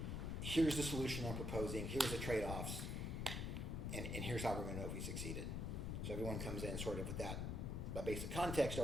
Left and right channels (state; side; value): noise; left; rumble, 1 dB below the sound